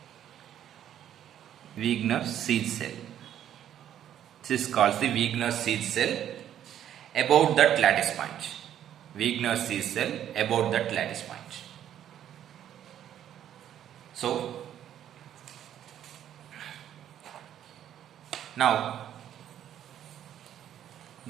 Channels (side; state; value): left; quieter; 10.6 dB